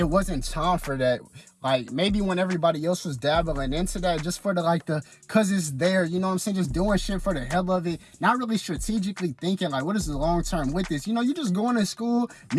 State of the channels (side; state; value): both; identical; correlation 1.00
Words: wasn't time for that. Like, maybe when everybody else was dabbling into that, just for the, like, cause it's there, you know what I'm saying? Just doing shit for the hell of it. Not really strategically thinking, like, what is the long term with this? You know, you just going to school,